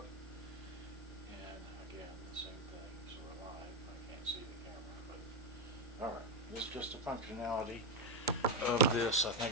And again, the same thing. So we're live. I can't see the camera, but all right. This is just a functionality of this. I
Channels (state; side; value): normal; both; correlation 0.07